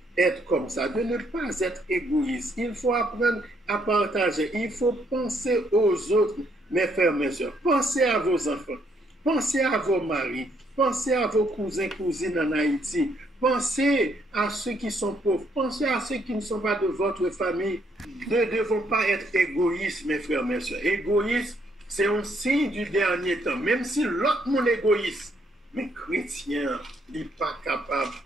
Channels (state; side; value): normal; both; correlation 0.71